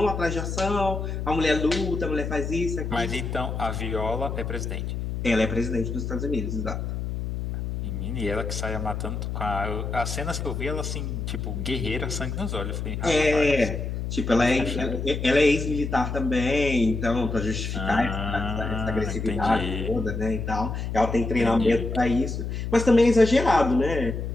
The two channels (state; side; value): noise; left; hum, 4 dB below the sound